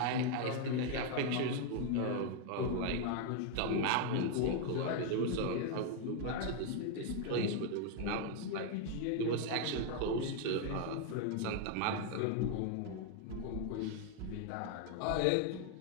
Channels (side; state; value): both; different; correlation 0.00